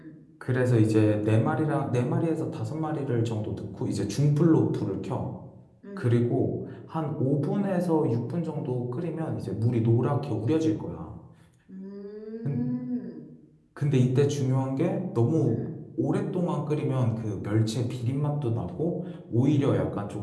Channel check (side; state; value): both; identical; correlation 1.00